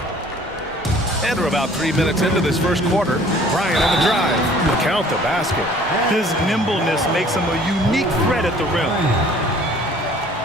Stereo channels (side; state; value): both; normal; correlation 0.53